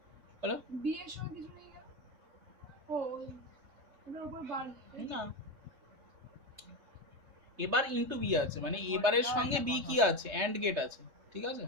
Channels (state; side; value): late; left; 3.3 ms